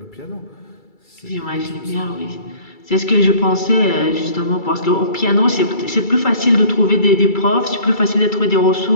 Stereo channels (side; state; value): right; late; 2.3 ms